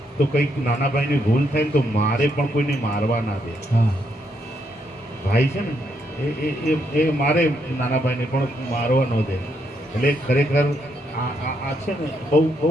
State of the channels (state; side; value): normal; both; correlation 0.77